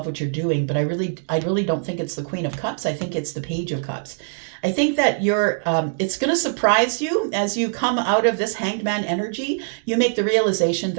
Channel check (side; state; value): left; silent; digital silence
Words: what you're doing, but I really don't think it's the Queen of Cups. I think it's the Page of Cups. I think that it's going to surprise you as you come out of this Hanged Man energy. You make the realization